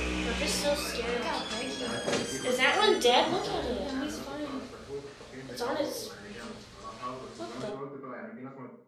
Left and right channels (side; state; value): both; identical; correlation 1.00